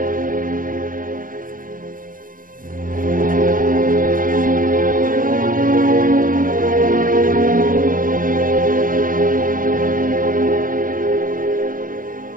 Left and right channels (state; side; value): late; left; 0.40 ms